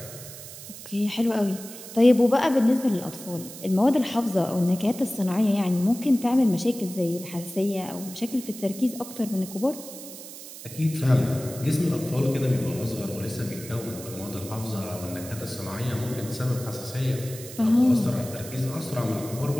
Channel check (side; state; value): right; noise; hiss, 13 dB below the sound